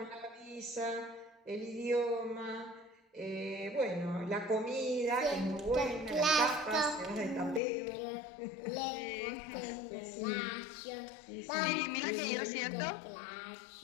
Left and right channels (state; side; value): drops out; right; at 7.6 s